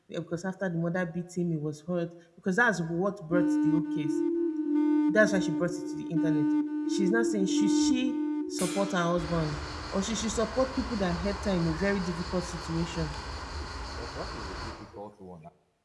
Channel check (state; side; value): identical; both; correlation 1.00